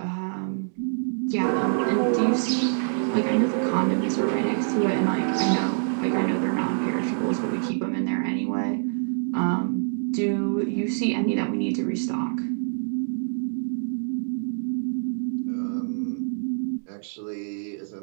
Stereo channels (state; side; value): silent; left; digital silence